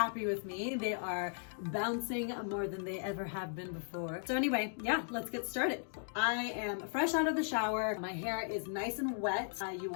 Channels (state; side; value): silent; right; digital silence